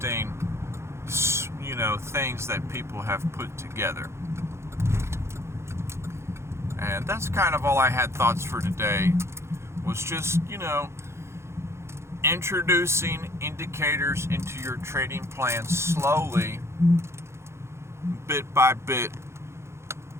you know, things that people have put together. And that's kind of all I had thoughts for today, was just, you know, introducing indicators into your trading plan slowly, bit by bit.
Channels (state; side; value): late; left; 0.13 ms